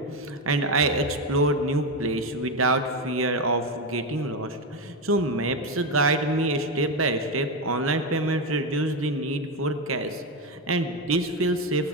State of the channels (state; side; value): normal; both; correlation 0.11